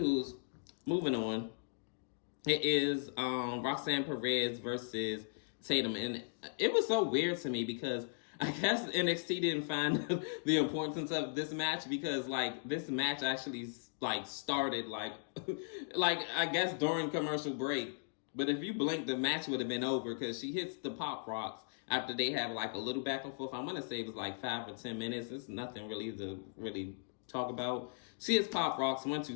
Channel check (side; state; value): right; silent; digital silence